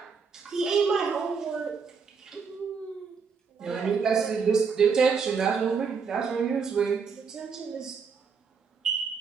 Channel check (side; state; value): left; quieter; 5.7 dB